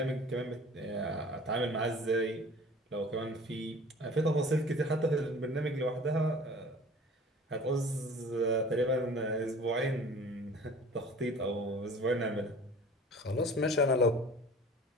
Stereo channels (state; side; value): normal; both; correlation 0.45